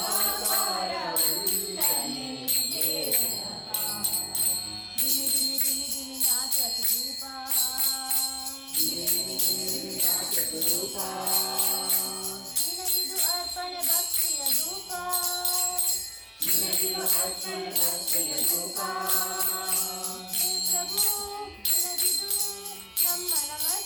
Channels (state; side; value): identical; both; correlation 1.00